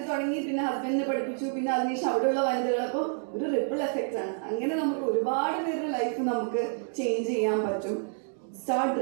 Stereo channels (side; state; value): left; silent; 59 dB below the other